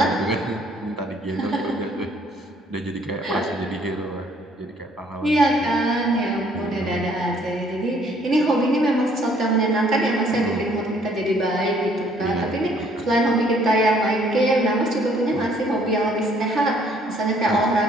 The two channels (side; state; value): both; normal; correlation 0.62